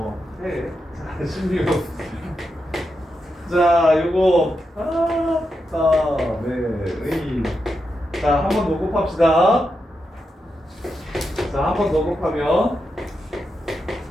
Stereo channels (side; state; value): both; normal; correlation 0.86